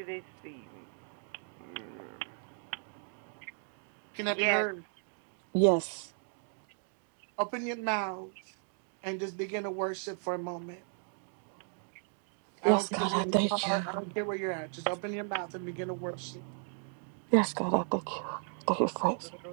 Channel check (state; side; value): silent; left; 54 dB below the other